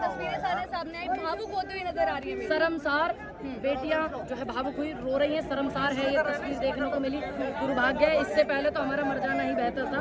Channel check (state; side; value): identical; both; correlation 1.00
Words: सामने आई, भावुक होते हुए नजर आ रही है। शर्मसार बेटियां जो है भावुक हुई रो रही हैं, शर्मसार है ये तस्वीर देखने को मिली। दुर्भाग्य है, इससे पहले तो हमारा मर जाना ही बेहतर था।